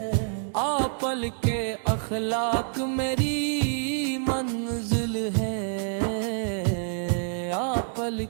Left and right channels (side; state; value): left; silent; digital silence